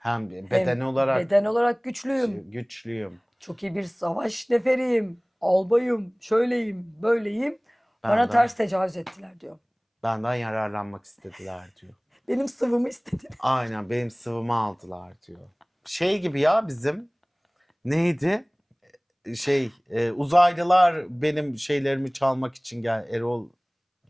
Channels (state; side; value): identical; both; correlation 1.00